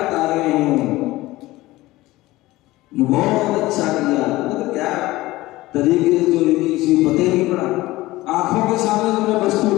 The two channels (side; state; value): right; quieter; 18.5 dB